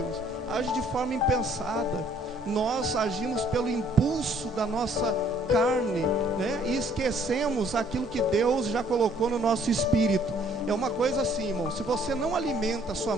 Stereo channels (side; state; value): both; normal; correlation 0.61